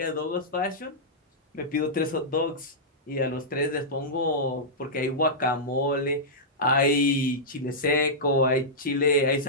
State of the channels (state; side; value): normal; both; correlation -0.12